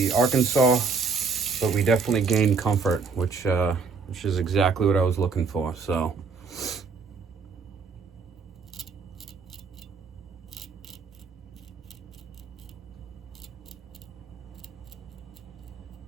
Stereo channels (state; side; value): quieter; left; 5.0 dB